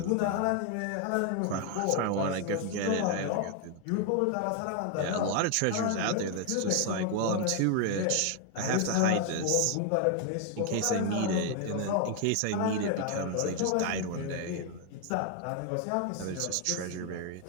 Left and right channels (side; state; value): both; different; correlation 0.01